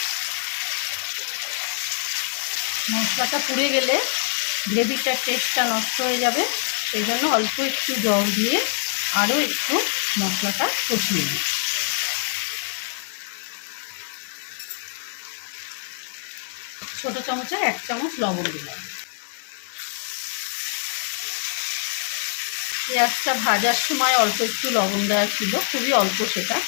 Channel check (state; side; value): silent; right; 62 dB below the other